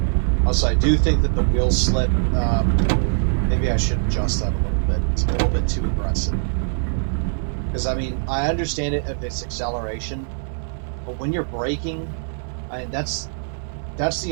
Also, I do think that the wheel slip, maybe I should adjust that a little bit. It's a little bit too aggressive. Because, I mean, I understand it if it's acceleration, but when you're braking, I mean, that's the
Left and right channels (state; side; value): silent; left; 62 dB below the other